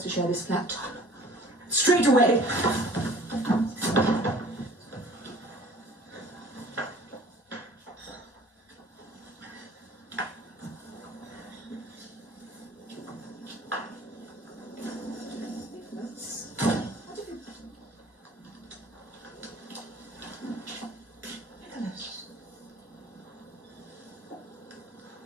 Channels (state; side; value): normal; both; correlation 0.49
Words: to share this flat. Straight away.